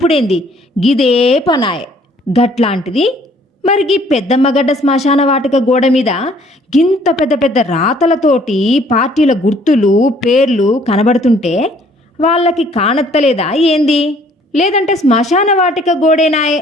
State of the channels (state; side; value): normal; both; correlation 0.59